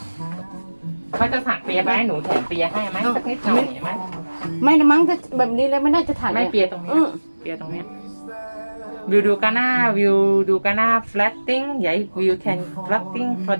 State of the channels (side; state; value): both; inverted; correlation -1.00